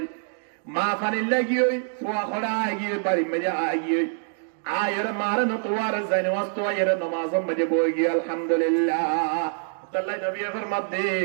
মা পানির লাগিয়ে ফুয়া খড়া আগিয়ে বাড়ি মেজে আগিয়ে আয়ের মারে নতোয়ার যাই নামাজ তো আয়ের নামাজ মেজে বই গিয়ে আলহামদুলিল্লাহ তাল্লাই নবী ফরমাত দে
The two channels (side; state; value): left; silent; digital silence